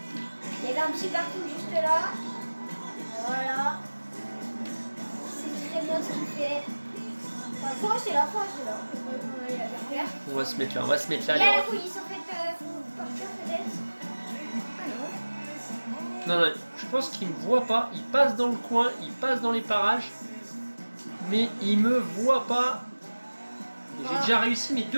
Il y avait un petit parking juste là. Voilà. C'est très bien ce qu'il fait. Enfin, faut rester là. On va aller la faire. On va se mettre là, Il y les a la refs. police en fait, faut partir peut-être. Ah non. Non, je pense qu'il me voit pas. Il passe dans le coin, il passe dans les parages. Mais il me voit pas. J'ai déjà réussi mes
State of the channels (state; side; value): inverted; both; correlation -1.00